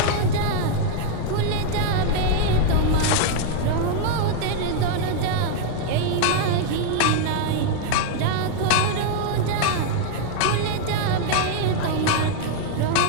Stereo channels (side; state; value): both; different; correlation 0.00